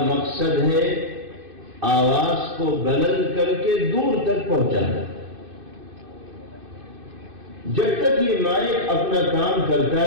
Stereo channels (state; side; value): late; left; 2.5 ms